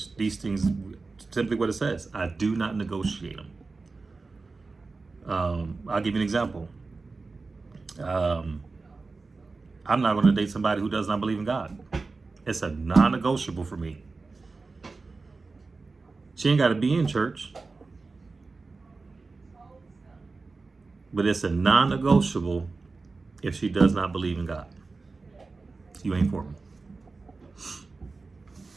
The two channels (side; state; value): left; quieter; 3.9 dB